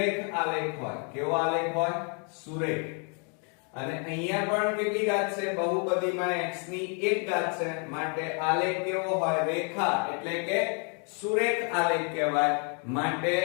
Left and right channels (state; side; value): quieter; right; 38.8 dB